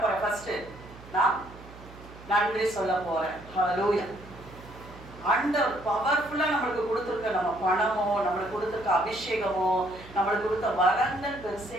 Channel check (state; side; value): noise; right; hum, 18 dB below the sound